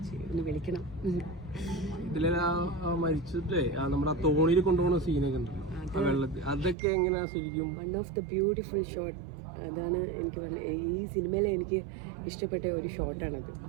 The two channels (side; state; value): left; drops out; at 6.8 s